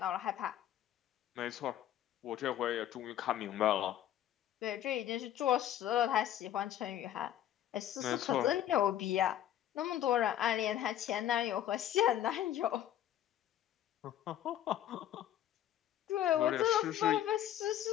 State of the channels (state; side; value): quieter; right; 11.6 dB